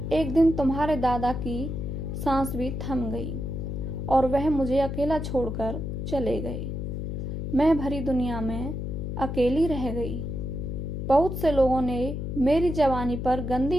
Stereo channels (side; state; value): left; noise; hum, 4 dB below the sound